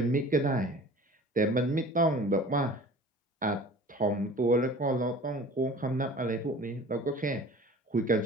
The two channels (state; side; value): normal; both; correlation 0.43